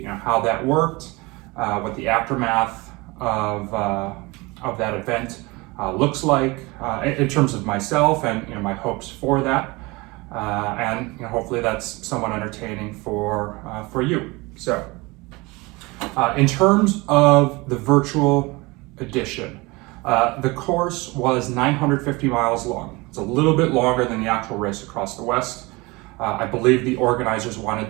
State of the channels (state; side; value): quieter; left; 24.1 dB